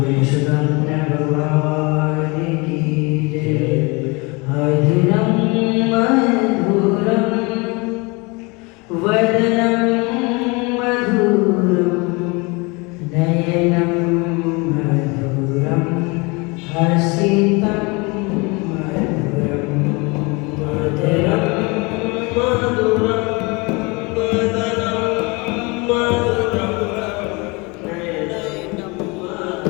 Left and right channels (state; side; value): quieter; right; 27.5 dB